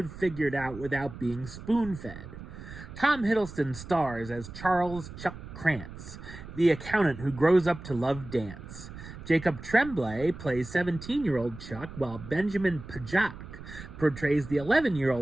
figured out without being spoon-fed. Tom Hiddleston stars as Charles Chuck Krantz, the accountant who grows up to love dance. Jacob Tremblay plays 17-year-old Chuck, while Benjamin Pajak portrays the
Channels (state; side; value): noise; right; rumble, 13 dB below the sound